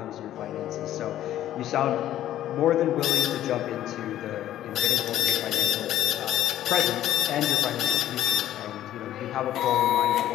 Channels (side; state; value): right; quieter; 12.6 dB